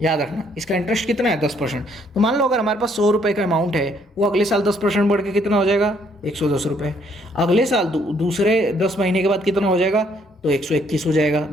याद रखना, इसका इंटरेस्ट कितना है, 10%। तो मान लो अगर हमारे पास 100 रुपये का अमाउंट है, वो अगले साल 10% बढ़ के कितना हो जाएगा, 110 रुपये। अगले साल दूसरे 10 महीने के बाद कितना हो जाएगा, तो 121 हो जाएगा।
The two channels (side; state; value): both; normal; correlation 0.67